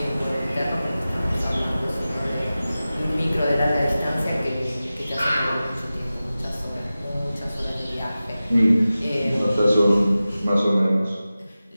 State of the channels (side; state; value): both; inverted; correlation -0.96